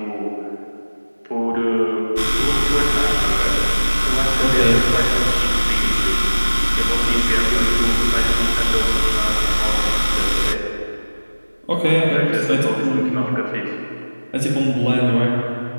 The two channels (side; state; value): both; inverted; correlation -1.00